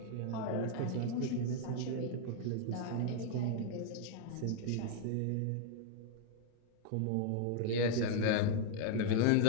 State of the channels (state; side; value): different; both; correlation 0.00